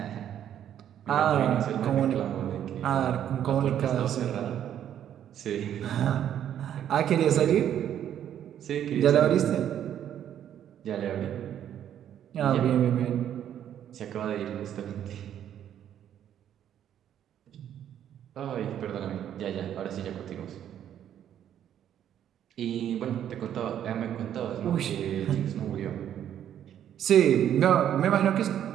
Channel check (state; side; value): quieter; left; 10.2 dB